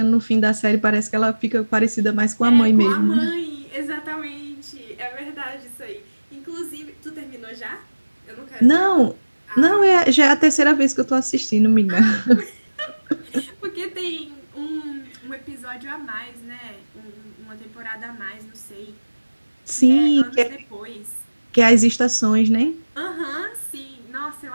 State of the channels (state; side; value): inverted; both; correlation -1.00